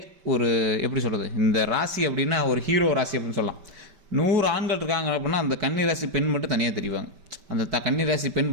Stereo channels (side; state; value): left; late; 5.2 ms